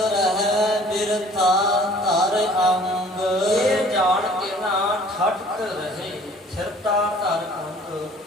ਬਿਰਥਾ ਧਰ ਅੰਗ। ਇਹ ਜਾਣ ਕੇ ਨਾ ਠੱਠ ਰਹੇ ਥਿਰਤਾ ਧਰ ਅੰਗ।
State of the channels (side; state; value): both; normal; correlation 0.53